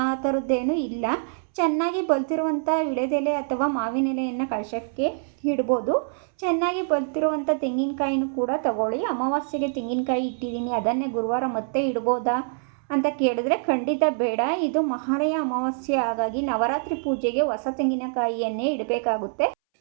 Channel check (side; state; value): left; silent; 62 dB below the other